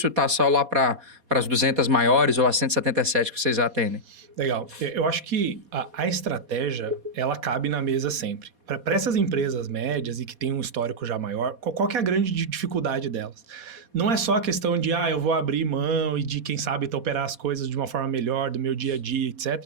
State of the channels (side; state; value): left; late; 4.2 ms